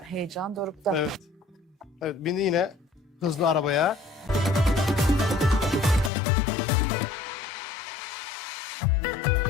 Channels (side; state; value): right; drops out; at 6.1 s